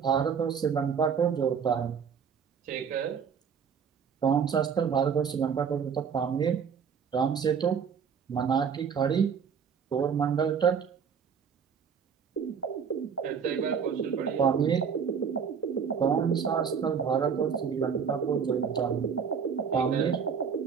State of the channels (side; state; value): left; quieter; 6.8 dB